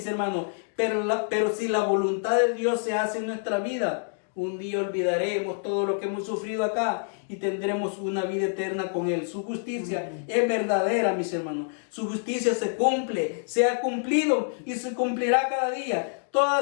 hermanos. Pero si la voluntad de Dios se hace en nuestra vida, un día olvidaremos todo lo que hemos sufrido acá y tendremos una vida eterna con Él. Su justicia es verdadera, mis hermanos. Su justicia se cumple, se ha cumplido y se cumplirá cada día.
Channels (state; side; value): silent; right; digital silence